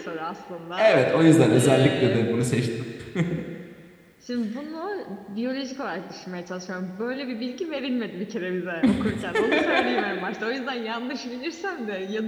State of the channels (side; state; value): both; identical; correlation 1.00